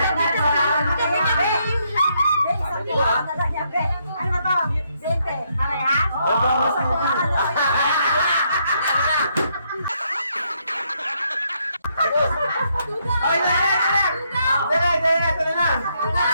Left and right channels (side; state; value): both; inverted; correlation -0.75